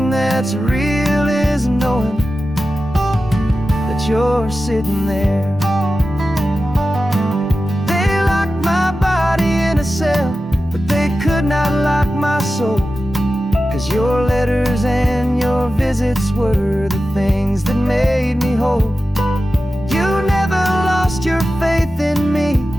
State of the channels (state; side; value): normal; both; correlation 0.93